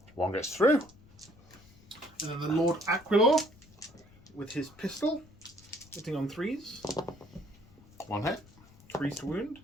1 gets through. And then the Lord Aquilor with his pistol. Hitting on 3s. 1 hit. 3s to wound.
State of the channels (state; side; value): noise; left; rumble, 25 dB below the sound